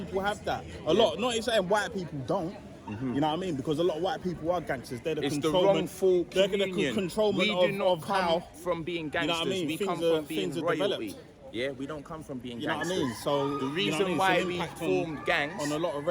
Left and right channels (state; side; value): identical; both; correlation 1.00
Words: have that. A lot. Not saying white people don't. You know what I mean? Because a lot of white people are gangsters. They're the controlment. They're the controlment we do not come from being gangsters. You know what I mean? We come from being royalty. Yeah, we don't come from being gangsters. You know what I mean? So the reason why we formed gangs on a lot of